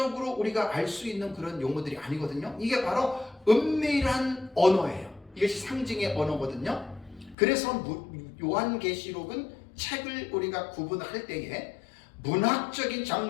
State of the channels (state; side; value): drops out; right; at 7.4 s